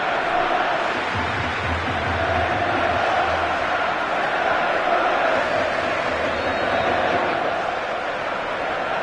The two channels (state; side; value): identical; both; correlation 1.00